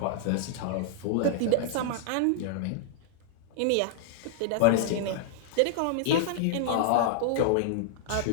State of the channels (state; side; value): different; both; correlation -0.01